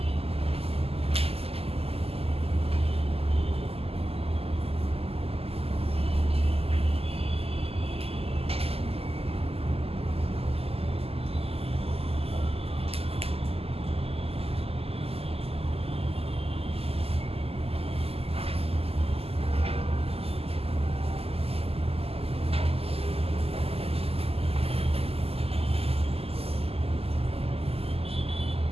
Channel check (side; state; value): left; late; 0.29 ms